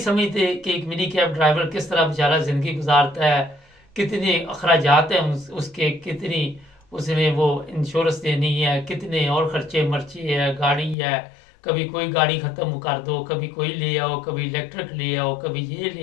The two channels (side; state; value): right; drops out; at 11.0 s